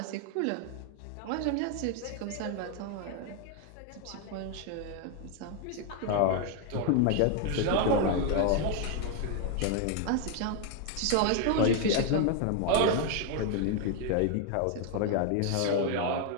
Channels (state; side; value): different; both; correlation 0.01